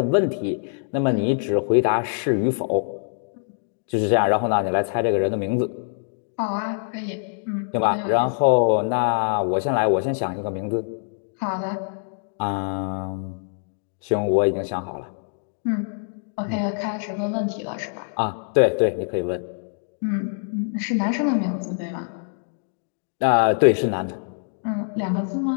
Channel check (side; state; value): right; silent; digital silence